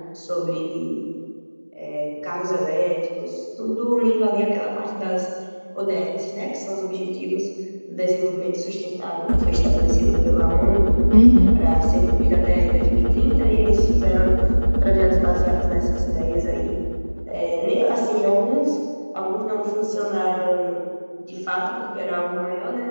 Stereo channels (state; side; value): inverted; both; correlation -1.00